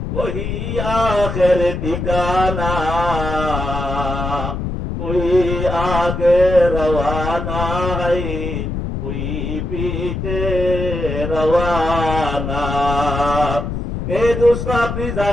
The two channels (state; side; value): noise; left; rumble, 4 dB below the sound